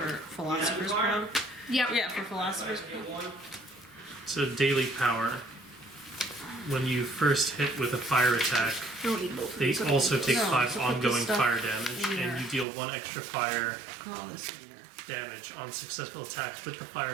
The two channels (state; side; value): drops out; left; at 12.7 s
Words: Philosopher's Crown. Yep. Yeah, for Philosopher's Crown. So, daily power. When you first hit with a fire attack, Don't need both of they these. also take No, 5 so put this ongoing stuff fire damage, in and there. you deal 1 extra fire All this in there. damage on successful attacks with the